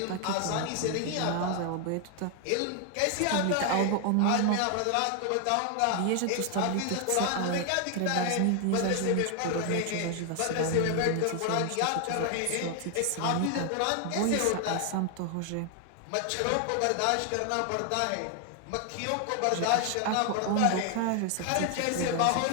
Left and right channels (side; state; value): both; different; correlation 0.00